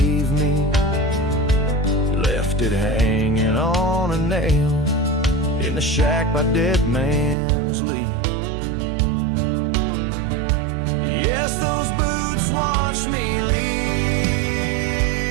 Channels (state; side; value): drops out; left; at 7.4 s